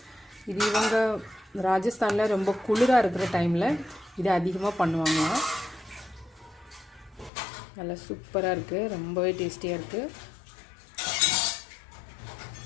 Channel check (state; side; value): drops out; right; at 7.3 s